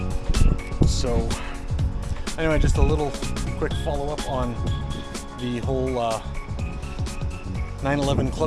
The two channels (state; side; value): identical; both; correlation 1.00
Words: So anyway, just a little quick follow-up on the whole 911